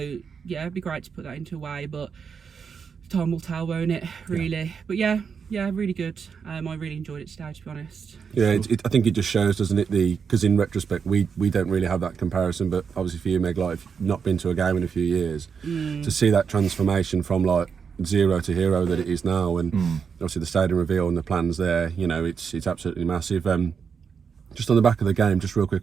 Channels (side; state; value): left; quieter; 6.3 dB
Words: it'd be great to put that into a way, but time will tell, won't it, really? But really good. I really enjoyed it today, to be honest. I think it just shows, doesn't it, because in retrospect we don't really have that comparison, but obviously for you, Meg, like, if you've not been to a game in a few years, to see that transformation from like 0 to hero that it is now, and obviously the stadium reveal and the plans there, it's absolutely massive. Just on the back of the game, just real quick,